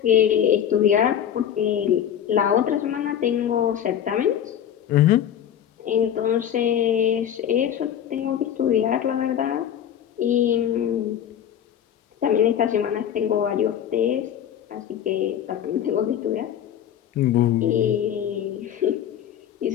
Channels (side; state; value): right; quieter; 9.7 dB